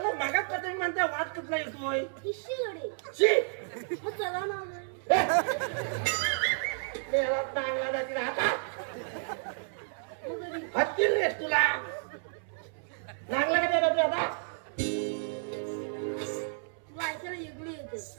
मागात पतंग म्हणता वाद कुठला येतोय इश्य गणी चला मामा चांगला जातील हातात हत्तील रे तुला चांगला का देतो आता वायसाला युगली येते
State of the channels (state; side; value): silent; left; 57 dB below the other